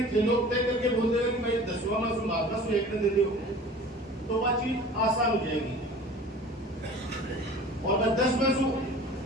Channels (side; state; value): both; normal; correlation 0.42